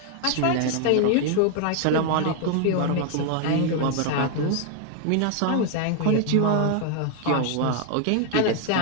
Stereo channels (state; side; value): different; both; correlation 0.00